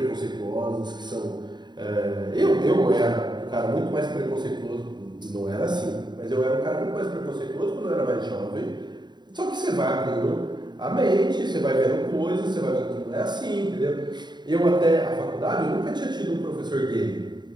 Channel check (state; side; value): late; left; 0.21 ms